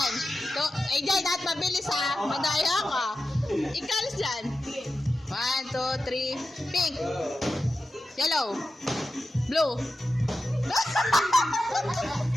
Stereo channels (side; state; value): both; normal; correlation 0.92